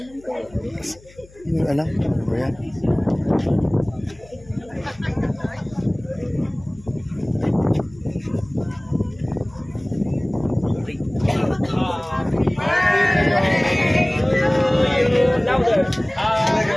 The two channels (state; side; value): noise; left; hum, 25 dB below the sound